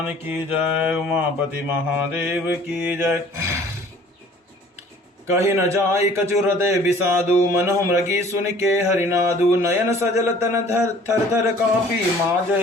की जय। उमापति महादेव की जय। कही न जाय कछु हृदय विषादु, मनहु मृगी सुन के हरिनादु। नयन सजल तन थर थर कापी,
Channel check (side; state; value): both; normal; correlation 0.52